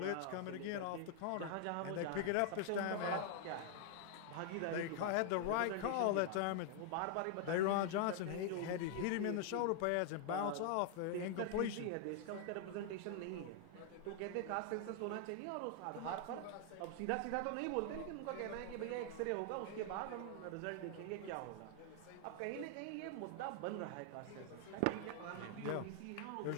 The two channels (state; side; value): different; both; correlation 0.00